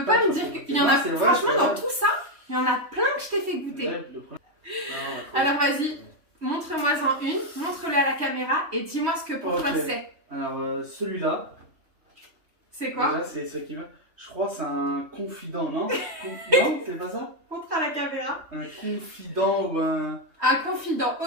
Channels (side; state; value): left; late; 3.1 ms